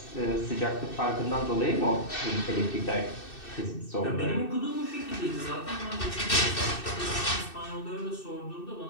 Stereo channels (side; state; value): right; late; 2.6 ms